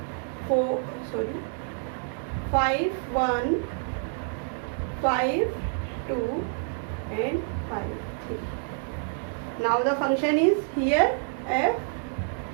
5 1, 5 2 and 5 3. Now the function is here f.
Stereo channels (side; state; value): left; silent; 59 dB below the other